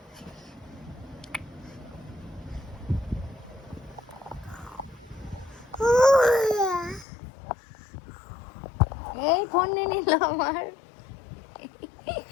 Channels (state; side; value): drops out; right; at 7.1 s